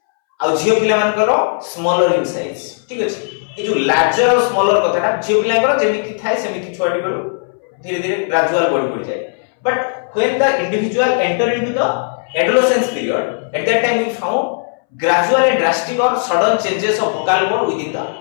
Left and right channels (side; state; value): right; silent; 65 dB below the other